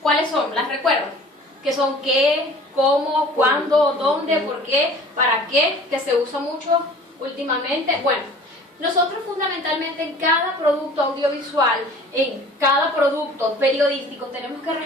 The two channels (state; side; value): normal; both; correlation 0.47